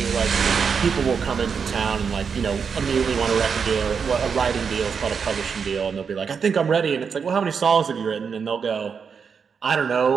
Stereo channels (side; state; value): left; quieter; 6.2 dB